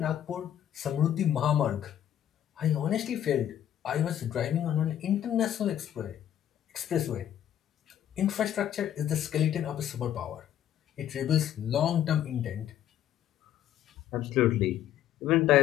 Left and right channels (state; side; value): quieter; right; 10.8 dB